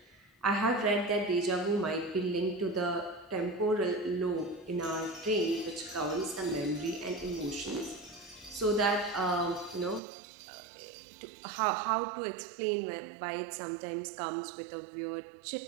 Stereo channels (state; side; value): drops out; left; at 10.0 s